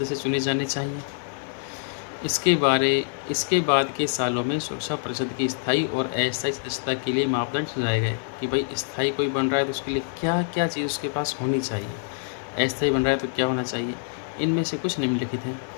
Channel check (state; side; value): silent; right; digital silence